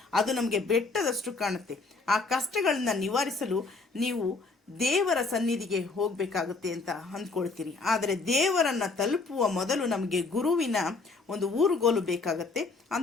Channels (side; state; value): right; quieter; 3.9 dB